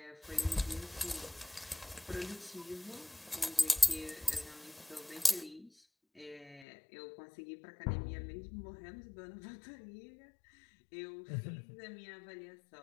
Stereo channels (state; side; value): drops out; right; at 6.7 s